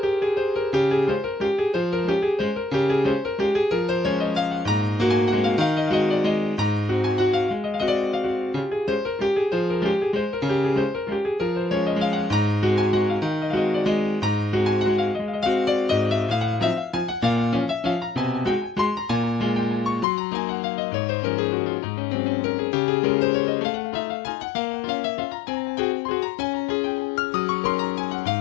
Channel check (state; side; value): drops out; right; at 20.1 s